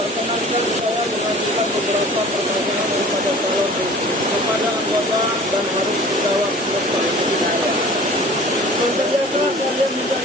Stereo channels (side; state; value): both; normal; correlation 0.45